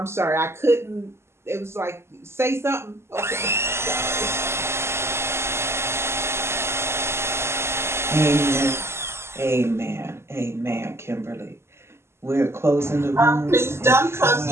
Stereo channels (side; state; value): left; late; 0.12 ms